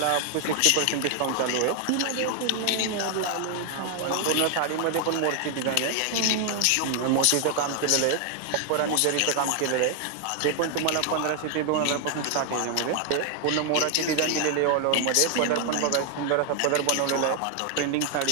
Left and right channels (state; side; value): different; both; correlation 0.00